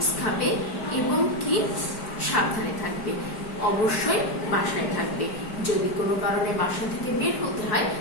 খাবে এবং কি সাবধানে থাকবে। অবশ্যই বাসায় থাকবে। যদি কোনো কারণে বাসা থেকে বের হতে হয়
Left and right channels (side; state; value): right; late; 4.7 ms